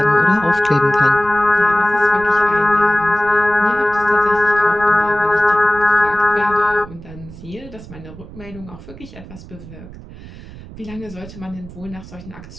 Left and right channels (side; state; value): right; noise; rumble, 16 dB below the sound